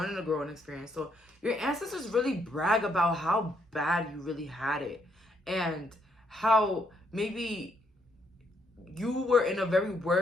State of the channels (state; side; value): normal; both; correlation 0.73